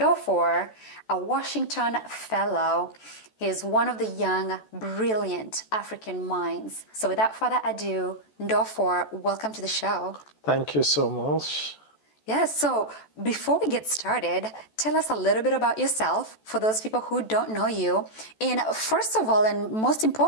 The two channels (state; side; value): late; right; 14 ms